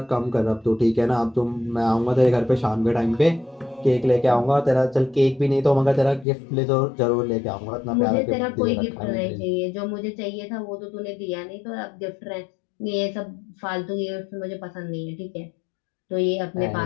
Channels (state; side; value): drops out; right; at 6.2 s